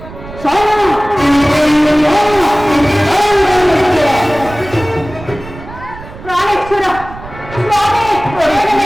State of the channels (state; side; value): noise; right; rumble, 15 dB below the sound